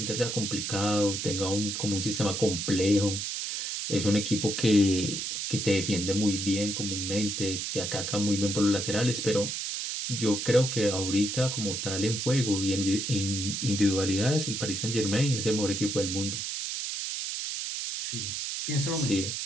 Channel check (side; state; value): right; noise; hiss, 3 dB below the sound